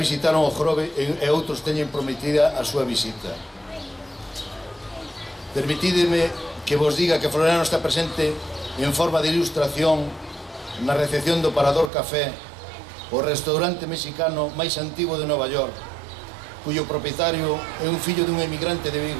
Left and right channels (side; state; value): left; drops out; at 11.9 s